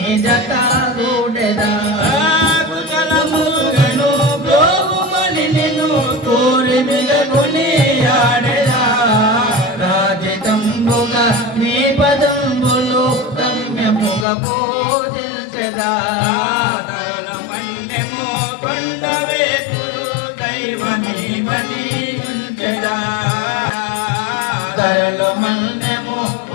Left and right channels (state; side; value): drops out; right; at 14.2 s